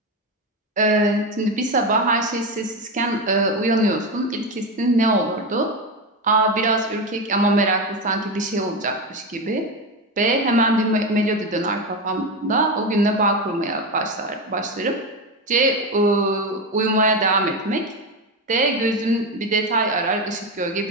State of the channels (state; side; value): normal; both; correlation 0.16